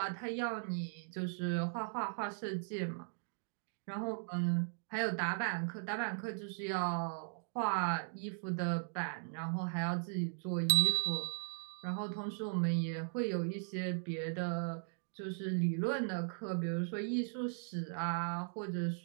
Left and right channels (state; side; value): silent; left; digital silence